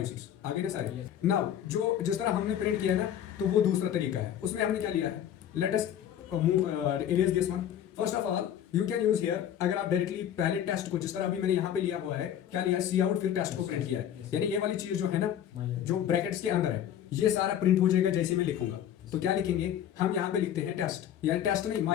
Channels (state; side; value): quieter; right; 10.2 dB